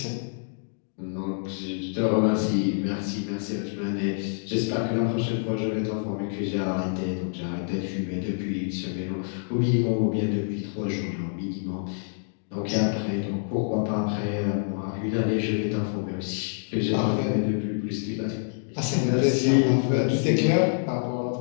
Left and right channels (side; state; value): right; silent; digital silence